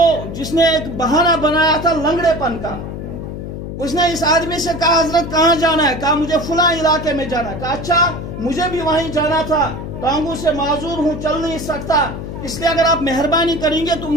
جس نے ایک بہانہ بنایا تھا لنگڑے پن کا. اس نے اس آدمی سے کہا حضرت کہاں جانا ہے؟ کہا مجھے فلاں علاقے میں جانا ہے. کہا اچھا مجھے بھی وہیں جانا تھا، ٹانگوں سے معذور ہوں، چل نہیں سکتا، اس لیے اگر آپ مہربانی کریں گے تو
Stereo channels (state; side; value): noise; left; hum, 8 dB below the sound